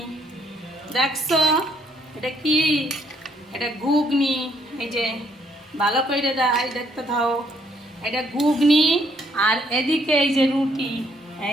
দেখছো, এটা কি? এটা ঘুগনি। এই যে ভালো করে দেখতে থাও, এটা ঘুগনি। আর এদিকে এই যে রুটি,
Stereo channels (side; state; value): both; normal; correlation 0.69